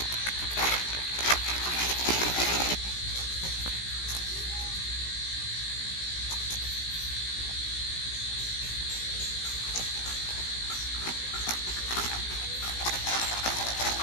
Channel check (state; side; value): late; right; 17 ms